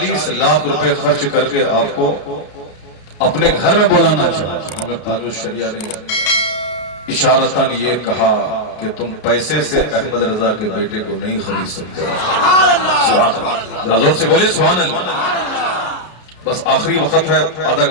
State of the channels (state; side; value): late; right; 32 ms